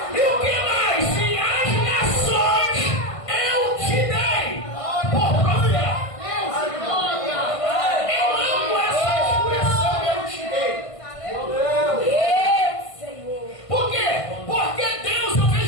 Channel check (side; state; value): right; late; 1.5 ms